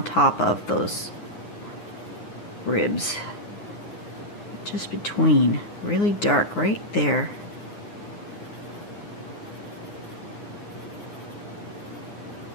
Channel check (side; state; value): right; late; 9.7 ms